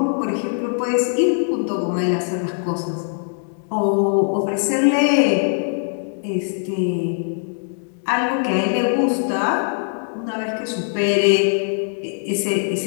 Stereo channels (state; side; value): silent; right; digital silence